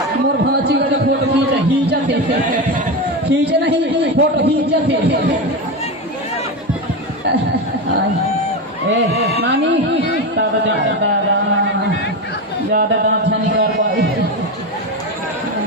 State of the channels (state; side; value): normal; both; correlation 0.17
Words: मोर भाची का फोटो खींचे नहीं फोटो खींचते ए नानी दादा ज्यादा दांत नहीं कर पाई